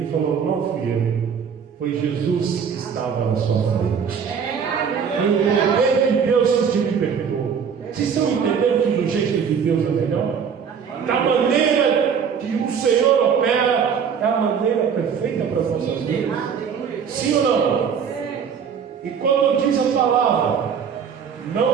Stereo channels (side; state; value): left; quieter; 6.9 dB